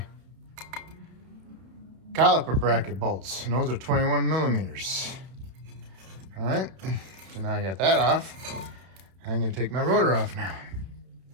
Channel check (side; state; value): left; late; 31 ms